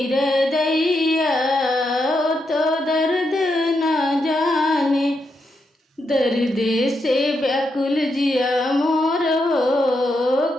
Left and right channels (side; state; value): both; normal; correlation 0.82